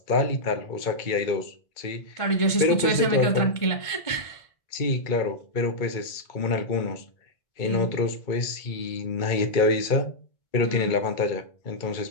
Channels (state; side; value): late; right; 1.5 ms